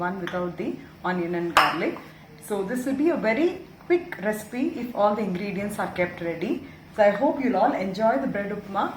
without the onion and garlic. So this will be a very quick recipe if all the ingredients are kept ready. So I hope you'll all enjoy the bread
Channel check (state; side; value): identical; both; correlation 1.00